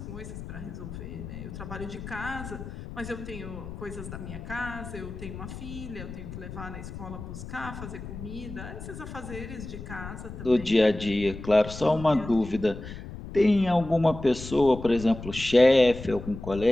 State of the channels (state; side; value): noise; left; rumble, 11 dB below the sound